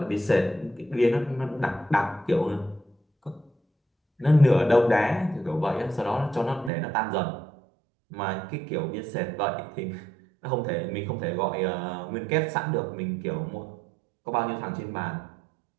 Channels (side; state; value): left; drops out; at 6.7 s